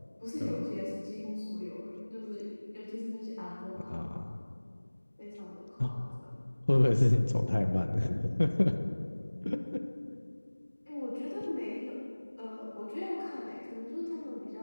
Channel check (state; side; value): inverted; both; correlation -1.00